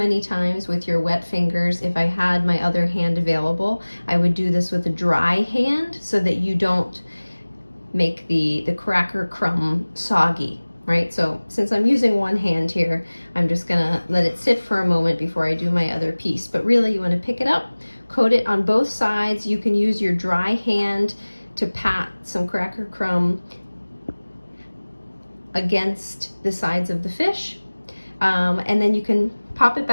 times with your wet fingers. If I had my other hand available, I would do this with a dry hand so that you don't make the cracker crumb soggy, right? So since I'm using one hand here, I'm just gonna let it sit for a moment before I do my other piece. But really, you wanna pick it up, coat it on both sides. You can use your dry hand to pat some cracker crumb against the sides of the fish. And then you can pop it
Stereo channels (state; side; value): inverted; both; correlation -1.00